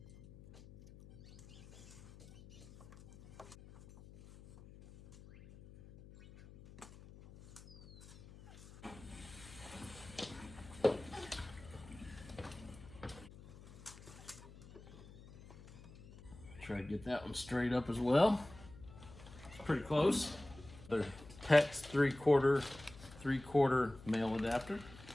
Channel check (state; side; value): noise; left; hum, 18 dB below the sound